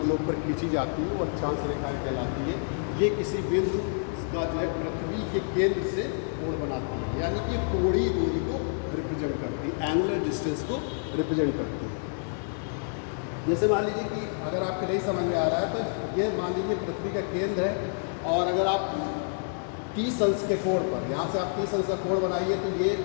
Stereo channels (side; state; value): right; silent; digital silence